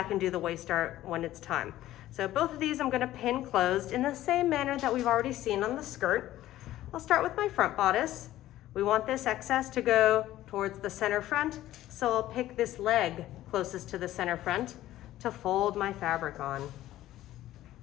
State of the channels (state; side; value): quieter; right; 14.4 dB